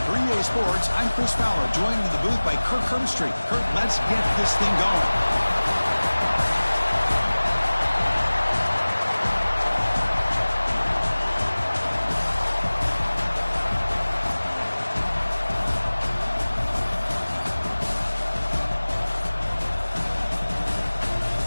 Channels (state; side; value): inverted; both; correlation -1.00